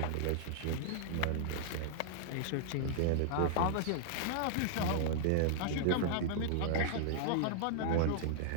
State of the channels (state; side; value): different; both; correlation -0.01